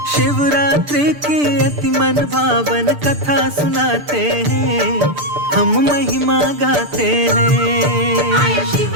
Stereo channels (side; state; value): left; late; 6.8 ms